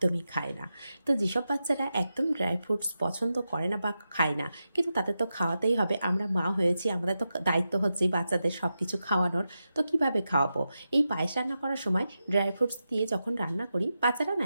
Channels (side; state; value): both; inverted; correlation -0.90